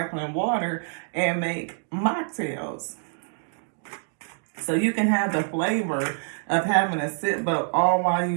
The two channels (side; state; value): left; silent; digital silence